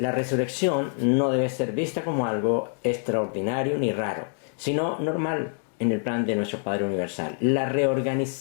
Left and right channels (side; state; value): right; silent; 56 dB below the other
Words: resurrección no debe ser vista como algo extraordinario ni raro, sino normal en el plan de nuestro Padre Universal. La